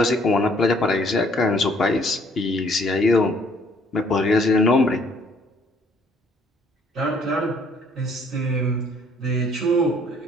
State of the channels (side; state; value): both; normal; correlation 0.61